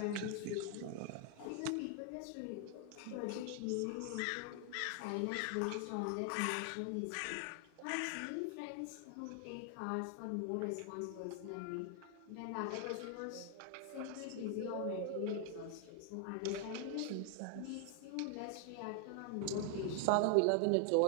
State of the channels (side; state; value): both; different; correlation 0.00